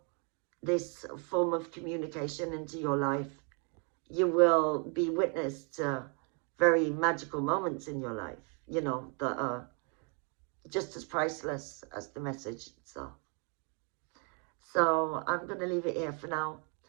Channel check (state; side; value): quieter; left; 35.7 dB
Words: this form of communication into your life, you will be witness to very magical moments in your life, you know, that are just as priceless as the message itself. So I'm going to leave it here for now.